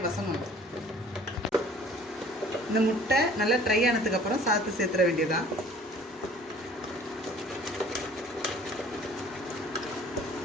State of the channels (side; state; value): both; normal; correlation 0.51